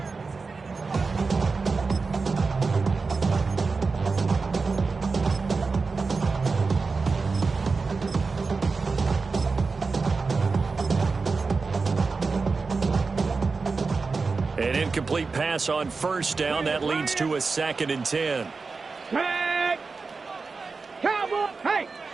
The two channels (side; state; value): left; quieter; 4.4 dB